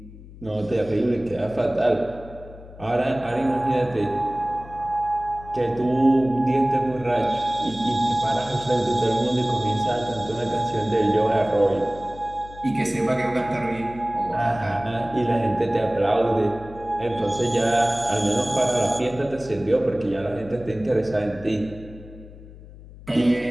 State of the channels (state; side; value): noise; left; hum, 18 dB below the sound